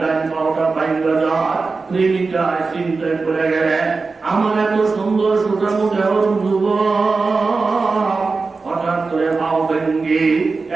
ডাইন পাওটা ভাঙা যায়। প্রেমিকা চিন্তায় পড়ে গেলে আমার এত সুন্দর সুঠামো দেহ যুবক হঠাৎ করে পাও ভেঙ্গে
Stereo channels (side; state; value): left; quieter; 4.2 dB